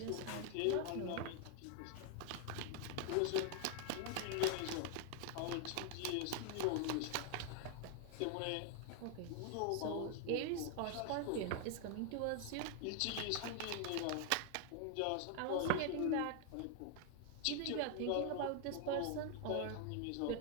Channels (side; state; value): both; different; correlation 0.00